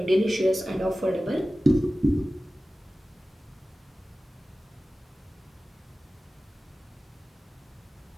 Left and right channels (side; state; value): both; normal; correlation 0.96